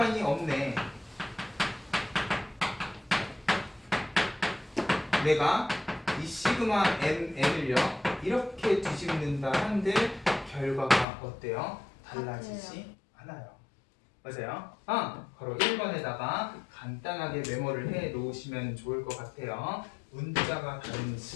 없네. 내가 이 시그마 mn을요 이렇게 뒤집는다 한들 결과가 어때요? 달라지지 않아요. 맞아요? 바로 1번에다가 간단하게 메모를 해 놓으시면 좋을 것 같아요. 문자가 다른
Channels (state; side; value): drops out; right; at 11.1 s